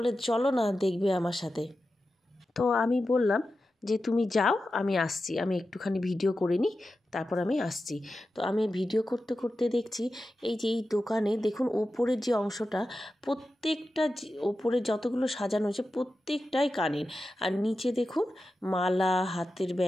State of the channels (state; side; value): normal; both; correlation 0.92